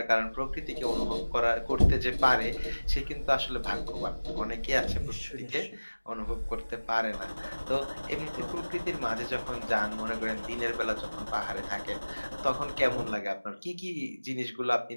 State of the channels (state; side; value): inverted; both; correlation -1.00